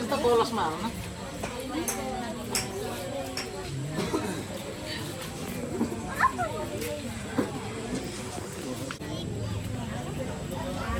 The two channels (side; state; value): both; identical; correlation 1.00